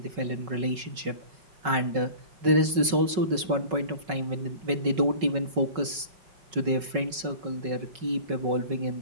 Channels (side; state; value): left; late; 5.3 ms